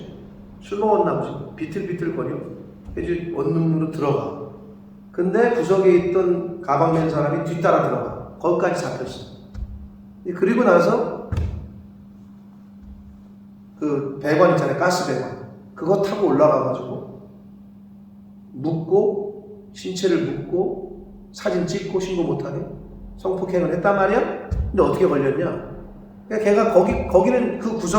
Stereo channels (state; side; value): identical; both; correlation 1.00